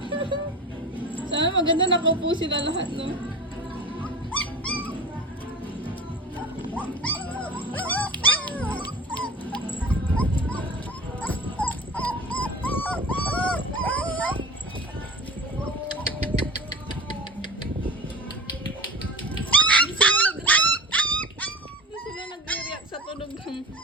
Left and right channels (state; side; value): normal; both; correlation 0.35